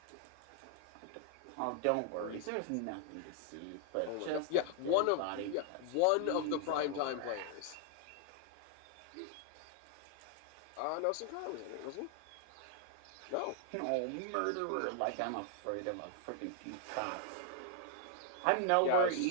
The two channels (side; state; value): both; different; correlation 0.00